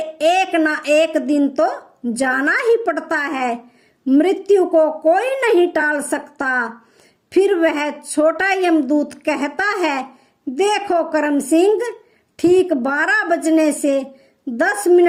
ना एक दिन तो जाना ही पड़ता है, मृत्यु को कोई नहीं टाल सकता। फिर वह छोटा यमदूत कहता है, देखो करम सिंह, ठीक 12 बजने से 10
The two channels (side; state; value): both; identical; correlation 1.00